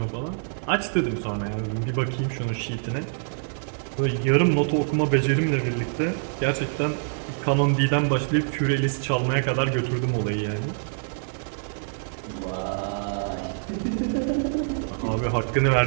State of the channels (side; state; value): left; silent; digital silence